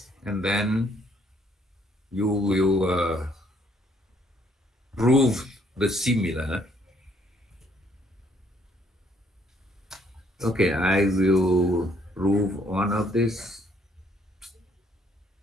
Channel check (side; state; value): both; normal; correlation 0.67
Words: and then you will prove the similar. Okay, I will prove one of this.